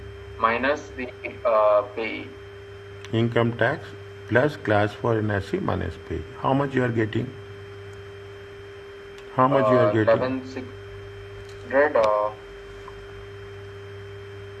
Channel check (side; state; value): both; identical; correlation 1.00